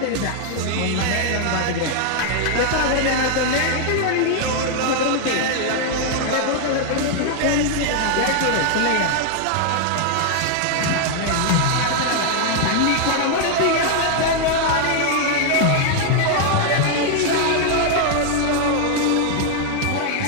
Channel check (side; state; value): both; different; correlation 0.00